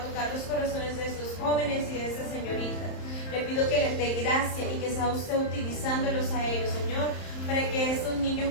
los corazones de estos jóvenes y de estas señoritas. Le pido que les dé gracia y que sea usted utilizándolos a ellos, Señor, para que estos niños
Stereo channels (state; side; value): late; right; 31 ms